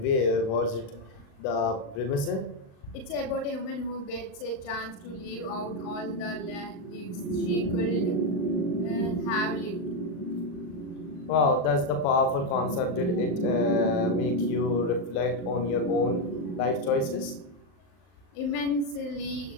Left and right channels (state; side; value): late; right; 39 ms